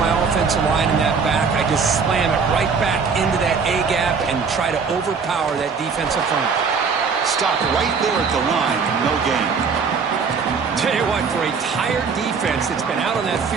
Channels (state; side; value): quieter; left; 5.5 dB